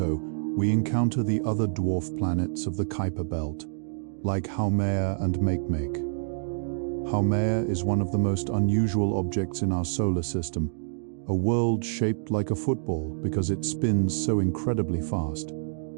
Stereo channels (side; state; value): left; silent; digital silence